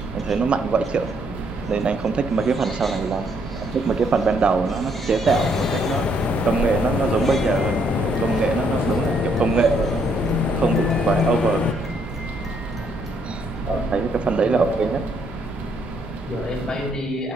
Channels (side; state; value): both; normal; correlation 0.71